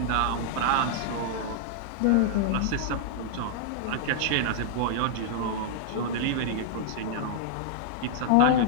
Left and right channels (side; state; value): both; different; correlation -0.01